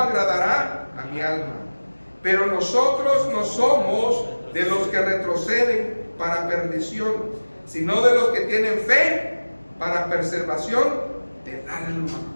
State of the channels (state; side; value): inverted; both; correlation -1.00